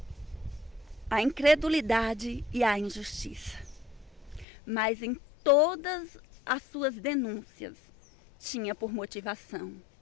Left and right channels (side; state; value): right; drops out; at 4.5 s